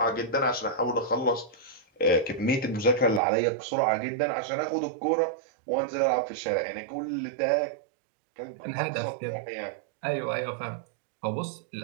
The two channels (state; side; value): drops out; left; at 3.2 s